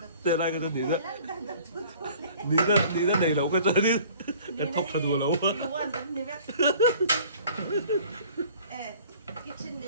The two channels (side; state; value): both; inverted; correlation -0.50